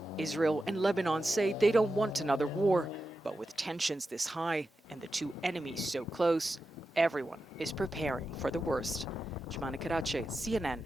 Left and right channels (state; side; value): normal; both; correlation 0.90